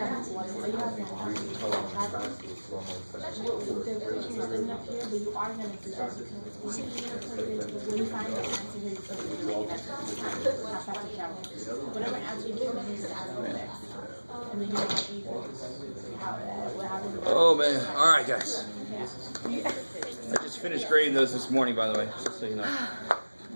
have to there's enough here, but you are going to do that because when you find the answer here, you have to travel. Whatever answer you give, you need to add over there. And then you have to oh man! All right, guys. I just finished grading those this morning, by the way, just so you know.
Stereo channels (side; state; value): both; inverted; correlation -1.00